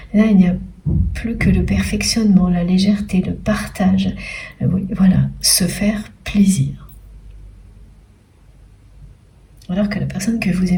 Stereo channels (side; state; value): both; identical; correlation 1.00